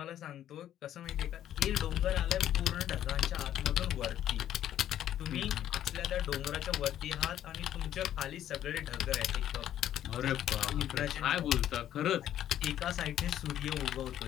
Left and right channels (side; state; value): right; quieter; 11.4 dB